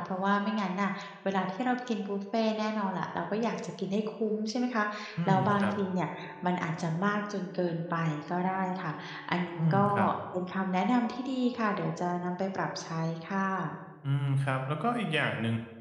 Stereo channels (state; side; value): identical; both; correlation 1.00